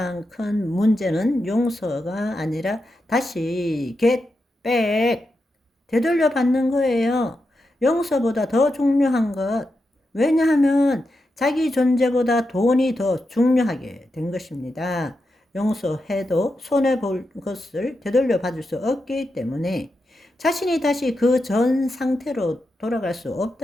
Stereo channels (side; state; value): both; normal; correlation 0.87